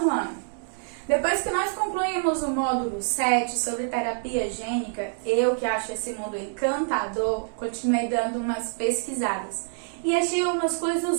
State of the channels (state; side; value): silent; left; 61 dB below the other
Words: ano. Depois que nós concluímos o módulo 7 sobre terapia gênica, eu que acho esse mundo encantador, continuei dando umas pesquisadas. E achei umas